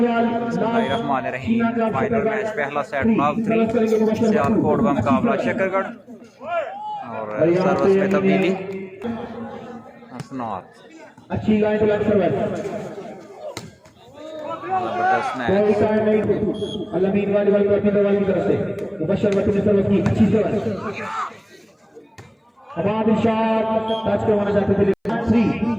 Final match पहला set knock 3 Sialkot का मुकाबला शकरगढ़ और सर्विस में तब्दीली हसनात। अच्छी लाइन जबरदस्त मैच। अलमीन वाली की तरफ से मुबशर वक्त में सर्विस की अच्छी सर्विस। अबाद इरशाद टच करवाना चाहते थे 3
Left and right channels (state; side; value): identical; both; correlation 1.00